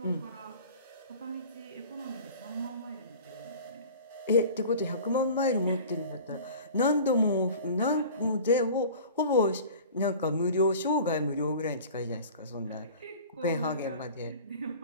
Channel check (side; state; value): both; inverted; correlation -0.41